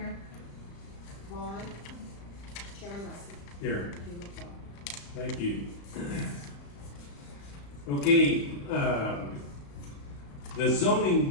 Vaughn. Chairman Russell. Here. You look well. Thank you. Okay, the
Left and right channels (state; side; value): late; right; 35 ms